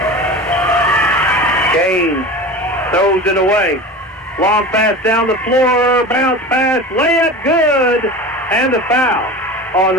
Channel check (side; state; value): both; normal; correlation 0.32